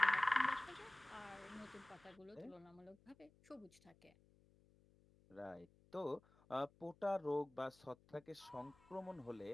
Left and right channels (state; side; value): noise; left; hum, 28 dB below the sound